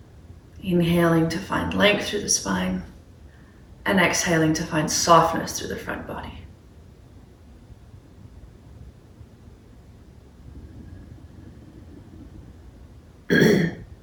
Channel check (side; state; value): both; identical; correlation 1.00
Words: Inhaling to find length through the spine, and exhaling to find softness through the front body.